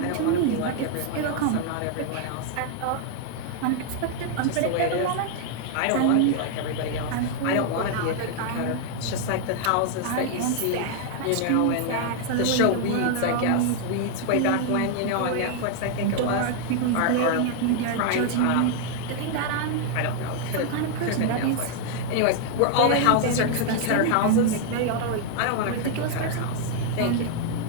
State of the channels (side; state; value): both; different; correlation 0.00